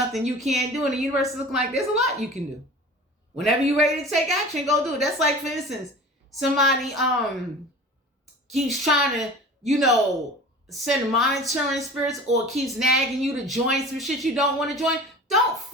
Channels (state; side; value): normal; both; correlation 0.39